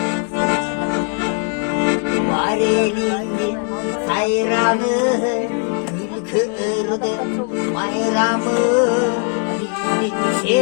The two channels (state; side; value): quieter; right; 36.9 dB